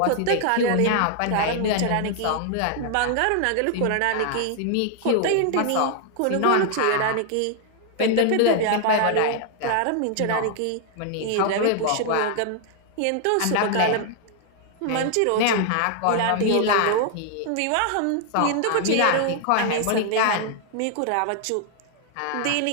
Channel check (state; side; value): different; both; correlation 0.00